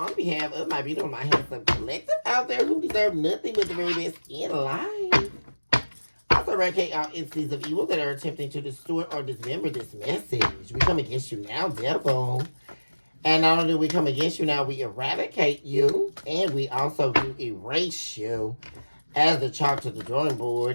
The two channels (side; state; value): both; inverted; correlation -1.00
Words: behalf of my beautiful, my handsome collective out there who deserve nothing but the very best in life. Also, eradicate all entities of evil that are attempting to distort or dismember this message. We come against you now, devil. And not only do we come against you now, we eradicate you, and we also do erase you as the chalk to the drawing